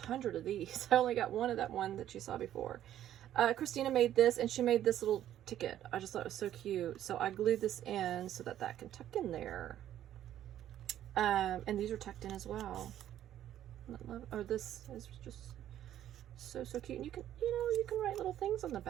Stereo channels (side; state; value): left; quieter; 11.7 dB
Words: of these. I only got one of that one that you saw before. Christina made this, and she made this little ticket. I just thought it was so cute. So I glued this in so that can tuck in there. And these are tucked in as well. Oh, this is just so cute. And you can, you can write little things on the